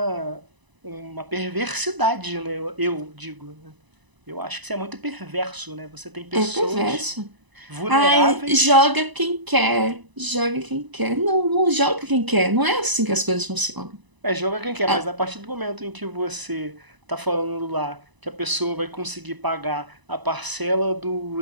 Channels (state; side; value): late; left; 1.0 ms